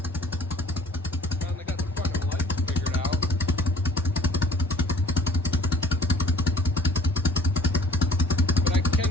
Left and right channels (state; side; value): normal; both; correlation 0.54